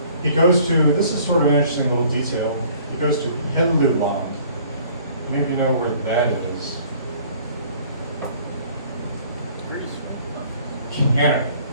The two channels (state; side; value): inverted; both; correlation -0.55